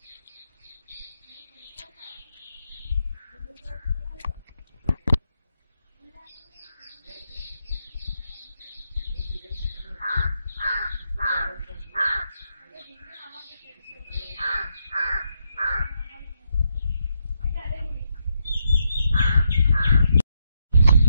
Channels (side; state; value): both; inverted; correlation -0.81